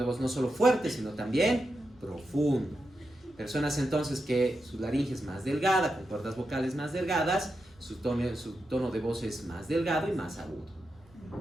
voz no solo fuerte, sino también profundo. Personas entonces que su laringe es más delgada, con cuerdas vocales más delgadas, su tono de voz es más delgado y más agudo.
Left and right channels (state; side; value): noise; right; rumble, 29 dB below the sound